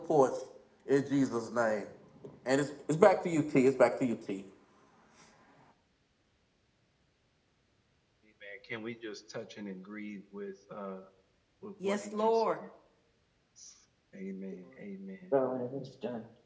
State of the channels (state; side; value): identical; both; correlation 1.00